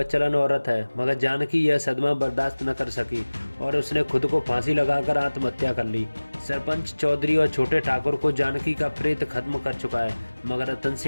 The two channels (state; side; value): inverted; both; correlation -1.00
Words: औरत है, मगर जानकी यह सदमा बर्दाश्त न कर सकी और उसने खुद को फांसी लगाकर आत्महत्या कर ली। सरपंच चौधरी और छोटे ठाकुर को जानकी का प्रेत खत्म कर चुका है, मगर रतन